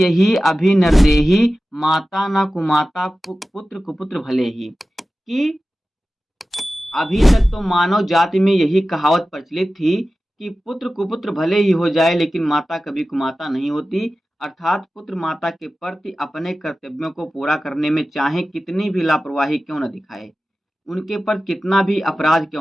अभी नरदेही, माता न कुमाता पुत्र कुपुत्र भले ही, कि अभी तक तो मानव जाति में यही कहावत प्रचलित थी कि पुत्र कुपुत्र भले ही हो जाए लेकिन माता कभी कुमाता नहीं होती, अर्थात पुत्र माता के प्रति अपने कर्तव्यों को पूरा करने में चाहे कितनी भी लापरवाही क्यों न दिखाए, उनके पर कितना भी अपराध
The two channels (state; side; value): normal; both; correlation 0.95